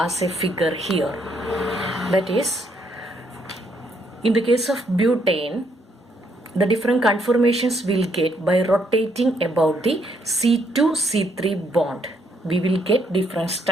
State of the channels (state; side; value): normal; both; correlation 0.72